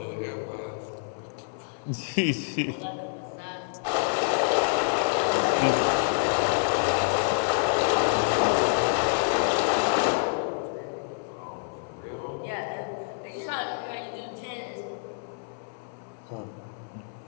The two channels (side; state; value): right; silent; 60 dB below the other